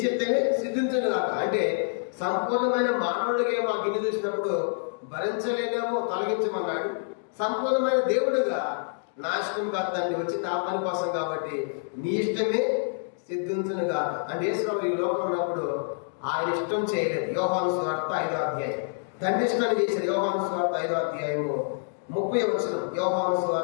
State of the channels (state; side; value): silent; right; digital silence